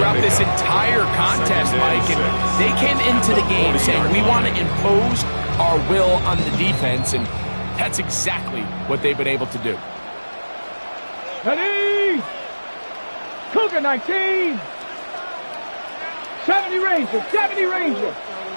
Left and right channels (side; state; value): both; inverted; correlation -1.00